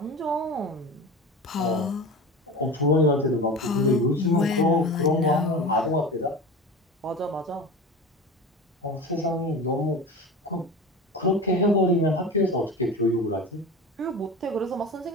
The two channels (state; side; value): normal; both; correlation 0.31